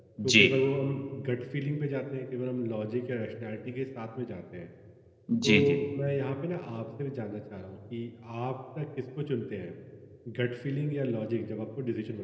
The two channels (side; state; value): both; identical; correlation 1.00